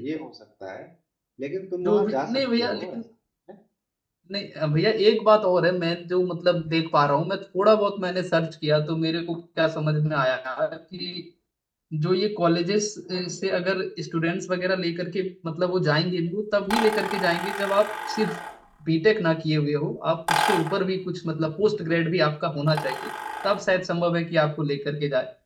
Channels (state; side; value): identical; both; correlation 1.00